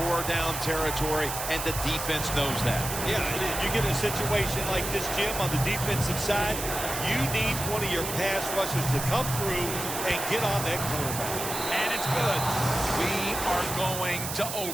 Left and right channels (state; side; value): noise; right; hiss, 5 dB below the sound